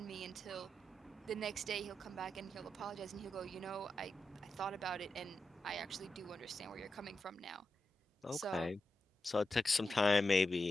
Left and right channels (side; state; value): both; normal; correlation 0.89